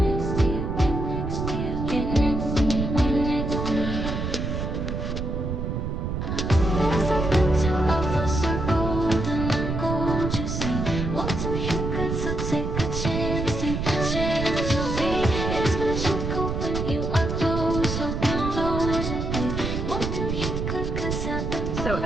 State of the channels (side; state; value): right; noise; rumble, 2 dB below the sound